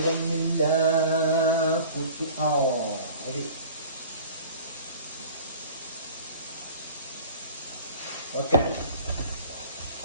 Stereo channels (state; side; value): inverted; both; correlation -0.44